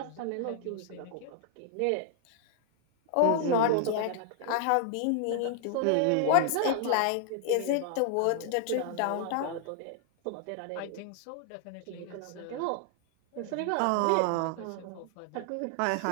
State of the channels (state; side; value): different; both; correlation 0.00